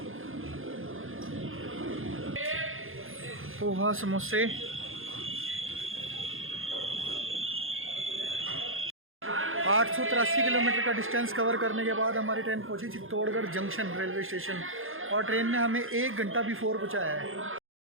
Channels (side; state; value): left; late; 0.60 ms